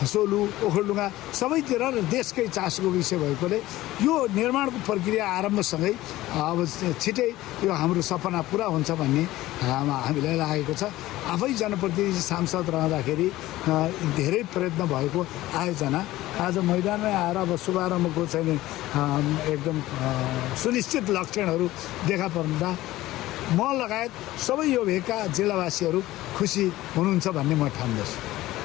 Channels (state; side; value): quieter; right; 16.6 dB